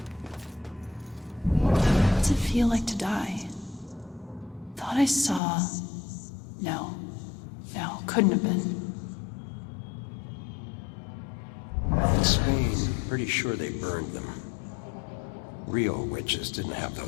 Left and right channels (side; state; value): right; drops out; at 5.4 s